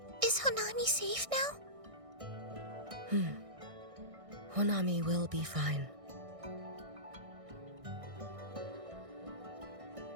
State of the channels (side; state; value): left; late; 1.6 ms